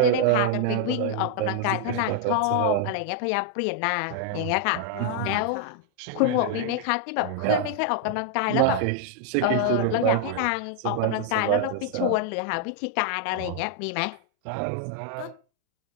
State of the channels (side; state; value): both; different; correlation 0.00